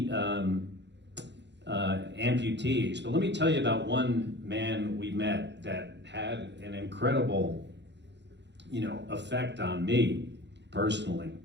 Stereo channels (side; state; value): left; late; 0.51 ms